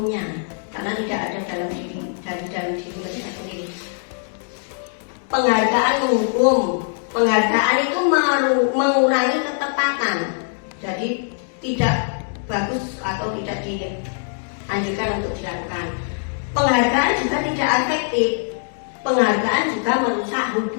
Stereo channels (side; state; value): right; silent; digital silence